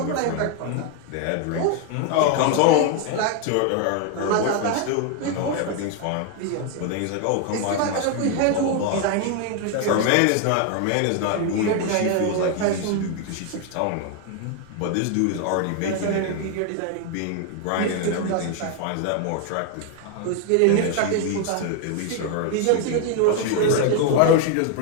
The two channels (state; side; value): different; both; correlation 0.01